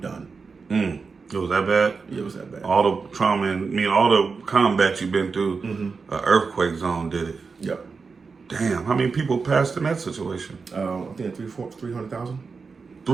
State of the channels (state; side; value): quieter; left; 4.8 dB